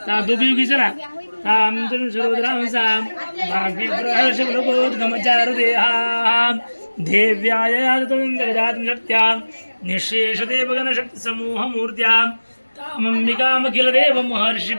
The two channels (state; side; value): inverted; both; correlation -1.00